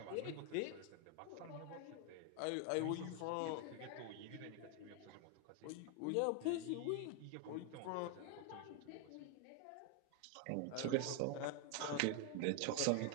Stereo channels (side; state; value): both; different; correlation 0.01